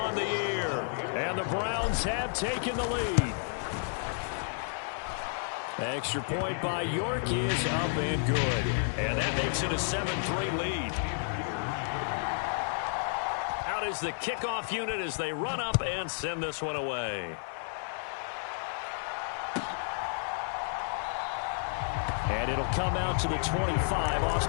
the year. And the Browns have taken the lead. Extra point by York is up and good. And that makes it a 7-3 lead. Out is the kickoff unit as they run up and send this one away. And it'll come out to the 25.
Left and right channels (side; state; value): right; silent; digital silence